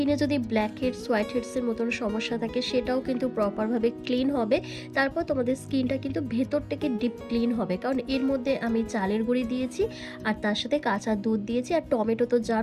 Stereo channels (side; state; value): both; identical; correlation 1.00